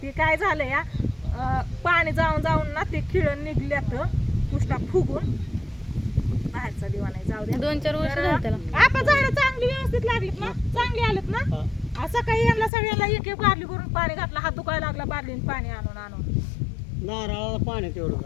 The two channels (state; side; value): drops out; right; at 12.7 s